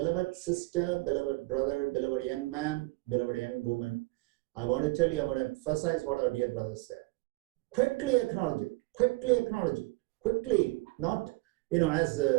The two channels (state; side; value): quieter; left; 23.6 dB